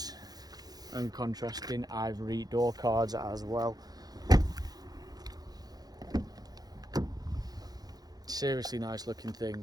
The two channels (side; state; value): left; late; 0.19 ms